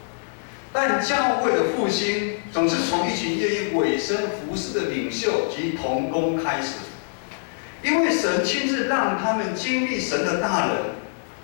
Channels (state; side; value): silent; right; digital silence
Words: 但教会的复兴总是从一群愿意委身服侍的领袖及同工开始，因为神亲自让他们经历神的大能，